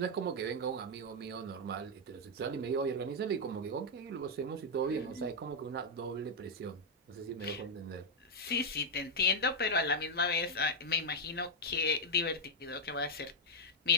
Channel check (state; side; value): normal; both; correlation -0.02